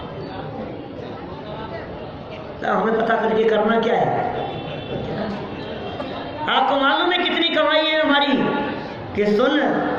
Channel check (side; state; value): both; identical; correlation 1.00